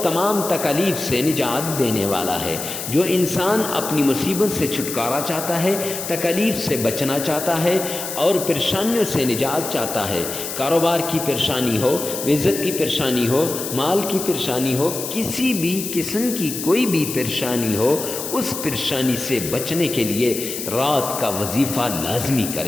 تمام تکالیف سے نجات دینے والا ہے۔ جو انسان اپنی مصیبت سے چھٹکارا چاہتا ہے، تکالیف سے بچنا چاہتا ہے اور پریشانیوں سے نجات چاہتا ہے، کاروبار کی پریشانی ہو، رزق کی پریشانی ہو، مال کی پریشانی ہو، کسی بھی قسم کی کوئی بھی پریشانی ہو، اس پریشانی سے بچنے کے لیے رات کا وظیفہ لازمی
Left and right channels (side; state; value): left; noise; hiss, 6 dB below the sound